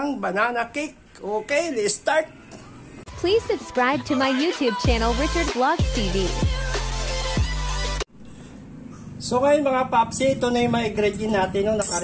banana cake. Okay, let's start. Please subscribe to my YouTube channel Richard Vlogs TV. So ngayon mga papsi, ito na yung mga ingredient natin, no,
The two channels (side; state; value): both; identical; correlation 1.00